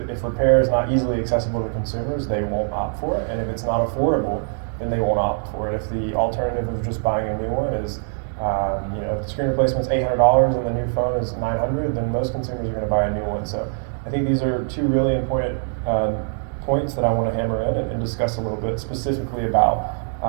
repair is not easily accessible to consumers, they won't opt for it. And if it's not affordable, then they won't opt for it. If the alternative of just buying a new one is, if the screen replacement's $800 and the new phone is $900, then most consumers are going to buy a new one. So I think these are two really important points that I want to hammer in and discuss a little bit specifically about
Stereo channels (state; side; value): silent; left; 64 dB below the other